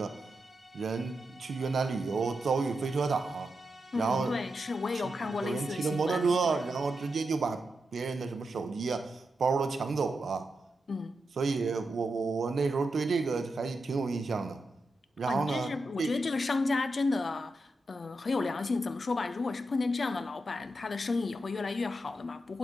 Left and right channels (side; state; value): both; normal; correlation 0.87